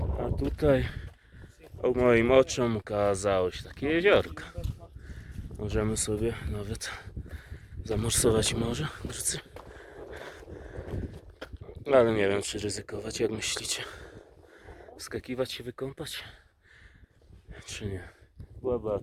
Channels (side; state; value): both; identical; correlation 1.00